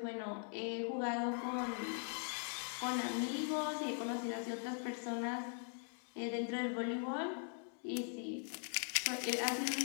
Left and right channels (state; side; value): silent; right; 50 dB below the other